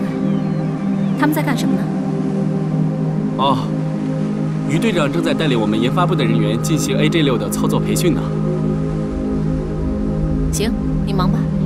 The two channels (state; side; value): identical; both; correlation 1.00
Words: 他们在干什么呢？哦，于队长正在带领我们研发部的人员进行 AJ6的操作培训呢。行，你忙吧。